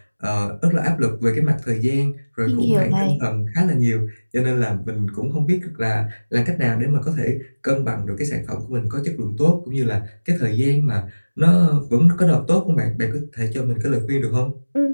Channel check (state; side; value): inverted; both; correlation -1.00